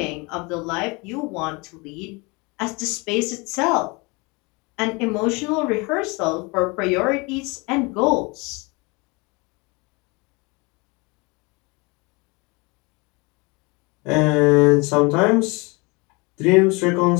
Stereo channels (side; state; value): right; quieter; 27.5 dB